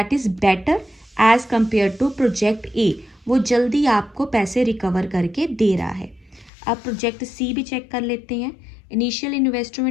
is better as compare to project A, वो जल्दी आपको पैसे रिकवर करके दे रहा है। अब प्रोजेक्ट सी भी चेक कर लेते हैं। इनिशियल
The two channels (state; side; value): drops out; right; at 6.5 s